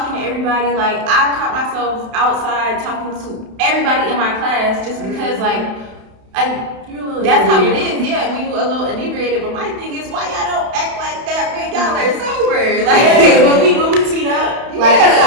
to everybody. Like I caught myself outside talking to everybody in my class just because that's how it is. Yeah, when you a little inebriated. But my thing is, why y'all don't act like that when y'all are sober? Like when we teed up,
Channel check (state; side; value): late; left; 31 ms